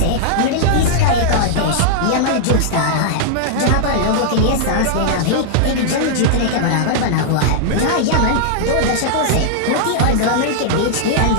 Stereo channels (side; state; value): both; different; correlation -0.01